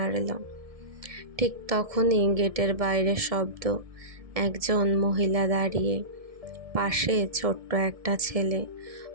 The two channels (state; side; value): late; left; 1.7 ms